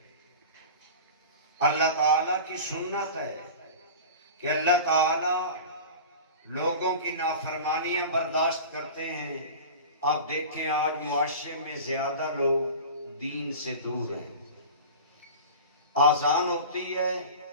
اللہ تعالیٰ کی سنت ہے کہ اللہ تعالیٰ لوگوں کی نافرمانیاں برداشت کرتے ہیں. آپ دیکھیں آج معاشرے میں زیادہ لوگ دین سے دور ہیں. آذان ہوتی ہے،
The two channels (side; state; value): both; inverted; correlation -0.34